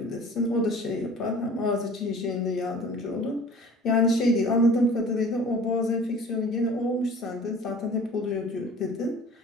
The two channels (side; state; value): both; normal; correlation 0.45